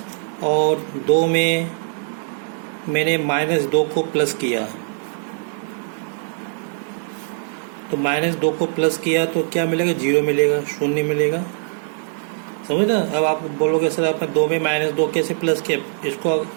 और 2 में मैंने -2 को प्लस किया, तो -2 को प्लस किया तो क्या मिलेगा? 0 मिलेगा, 0 मिलेगा। समझ ना? अब आप बोलोगे सर आपने 2 में -2 कैसे प्लस किया?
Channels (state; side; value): silent; left; 65 dB below the other